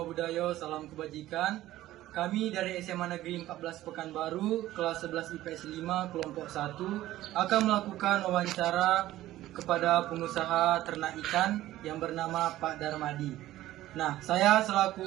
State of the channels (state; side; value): quieter; left; 14.9 dB